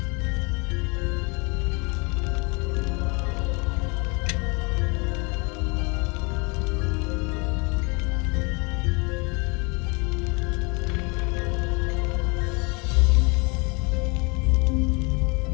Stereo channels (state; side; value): quieter; right; 30.2 dB